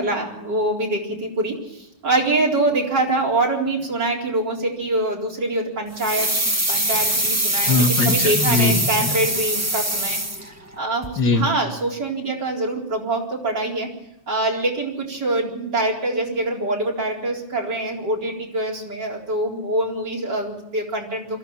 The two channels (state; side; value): normal; both; correlation -0.09